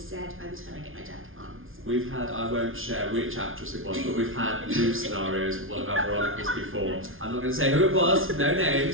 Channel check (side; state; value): left; late; 0.59 ms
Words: said by the time I get my jacket on. So. We've had, I won't share which actress it was, but we've had new scenarios with one of our Veronicas before. I'm not going to say who it was, no